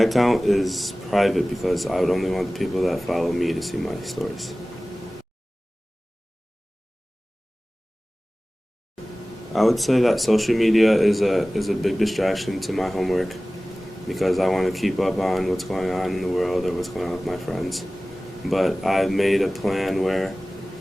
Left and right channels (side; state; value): both; normal; correlation 0.98